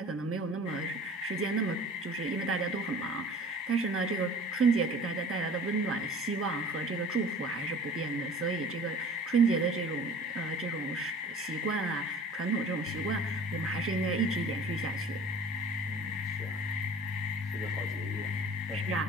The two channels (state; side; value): normal; both; correlation 0.44